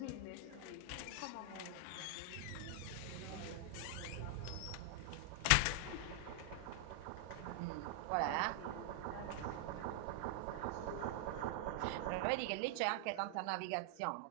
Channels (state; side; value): different; both; correlation 0.00